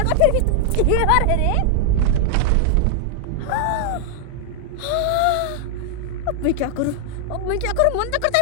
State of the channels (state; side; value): different; both; correlation 0.00